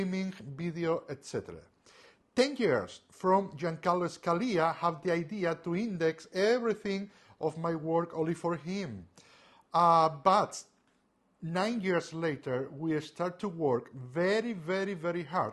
video, etc. 10 years from Giancarlo Scalia have the idea to index everything of my work only for him. But 9 years later, we start to work very, very, very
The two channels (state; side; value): identical; both; correlation 1.00